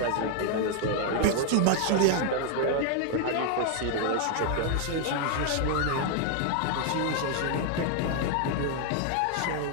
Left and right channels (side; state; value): both; different; correlation 0.00